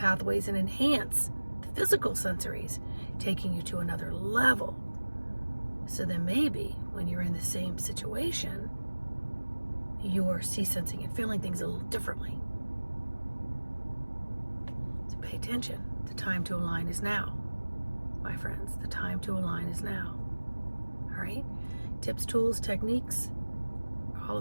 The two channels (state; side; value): inverted; both; correlation -1.00